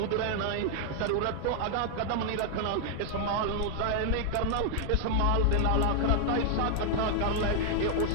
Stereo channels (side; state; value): both; different; correlation 0.00